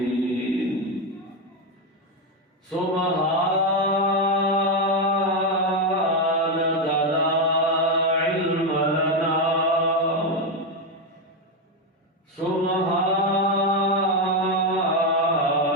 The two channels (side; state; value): both; normal; correlation 0.08